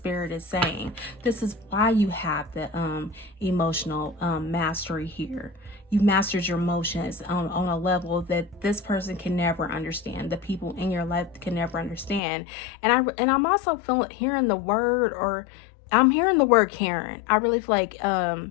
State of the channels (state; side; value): drops out; right; at 12.2 s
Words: is saying. This is why you have the emotional mastery here. You mastered your emotions on a level that this person can never understand. The people in your life can never understand. And I'm also hearing the word, or I'm hearing the word Karen. I really feel like,